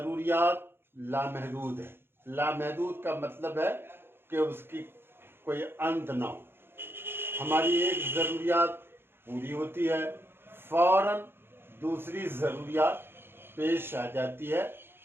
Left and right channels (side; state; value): left; late; 0.11 ms